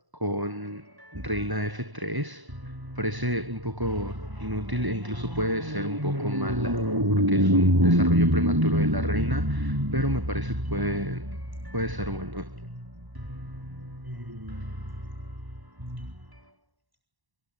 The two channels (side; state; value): left; late; 1.0 ms